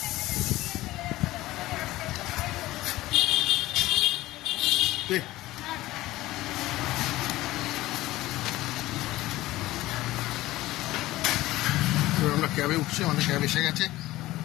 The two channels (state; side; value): quieter; right; 17.1 dB